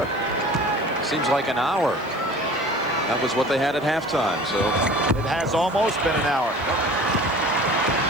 Seems like an hour. That was what they had at halftime. So it has almost been an hour.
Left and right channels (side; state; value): right; noise; hiss, 28 dB below the sound